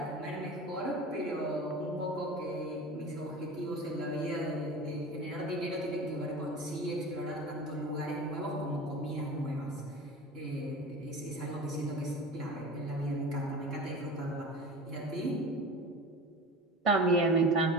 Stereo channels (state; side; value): normal; both; correlation 0.33